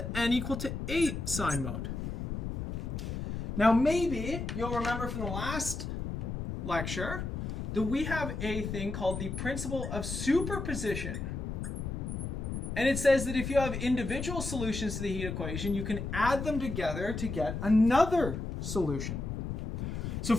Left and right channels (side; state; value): left; noise; rumble, 4 dB below the sound